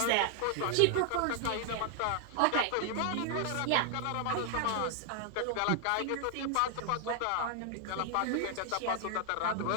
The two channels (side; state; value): both; different; correlation 0.00